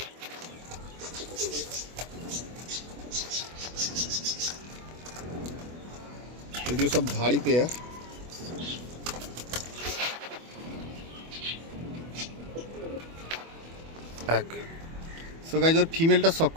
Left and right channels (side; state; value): left; late; 24 ms